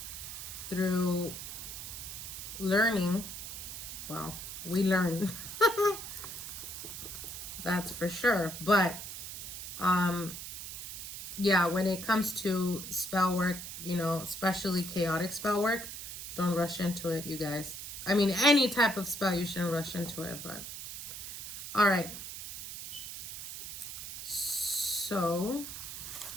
through learning, well, we learn. That's for sure. But yeah, when it comes to spell work, you know, especially chaotic spell work, don't rush into it, you guys. I mean, any type of spell, you shouldn't rush into it, but all right. So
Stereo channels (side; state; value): right; noise; hiss, 8 dB below the sound